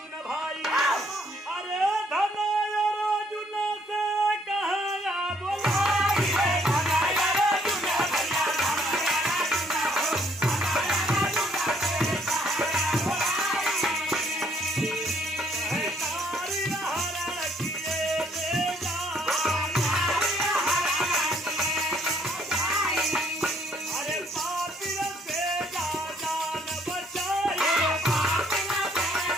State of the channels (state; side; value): normal; both; correlation 0.66